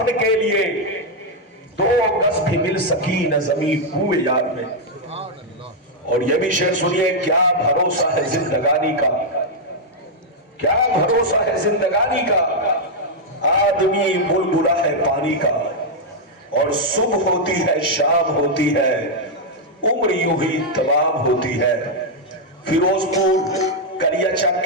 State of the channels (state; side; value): normal; both; correlation -0.02